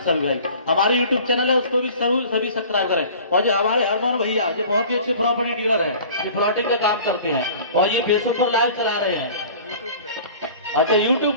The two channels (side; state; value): both; inverted; correlation -0.45